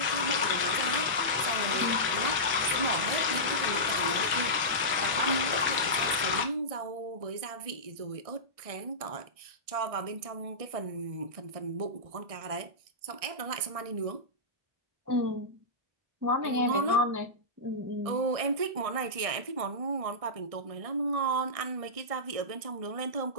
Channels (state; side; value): late; left; 1.6 ms